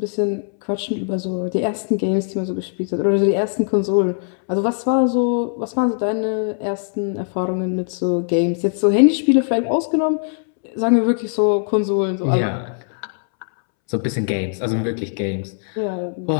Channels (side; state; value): right; silent; 65 dB below the other